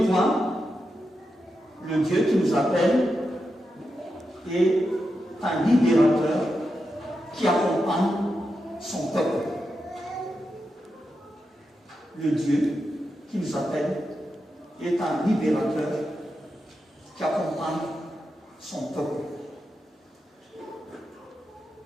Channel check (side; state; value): both; normal; correlation 0.87